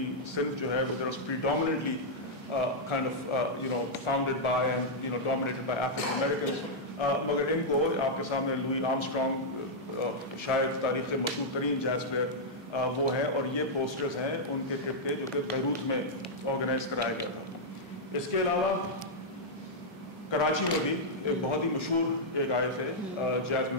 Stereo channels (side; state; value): both; normal; correlation -0.06